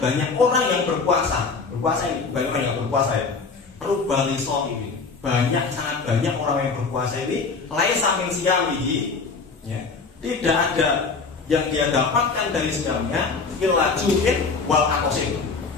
banyak orang yang berpuasa. Berpuasa ini banyak orang yang berpuasa ya. Rubba shaimin. Sangat banyak orang yang berpuasa ini laisa min siyamihi, ya. Tidak ada yang dia dapatkan dari siyamnya illa ju'in wal atasin,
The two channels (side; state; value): right; quieter; 4.6 dB